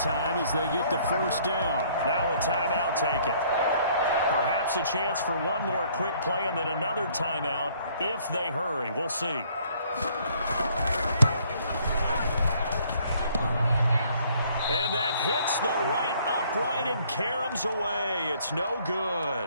time as they get the 1st down. Now a timeout taken. Perhaps perhaps a chance for one more quick play and then another timeout if they hurry. We'll see. And that hits the right upright and caroms away. It's no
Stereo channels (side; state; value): both; inverted; correlation -0.62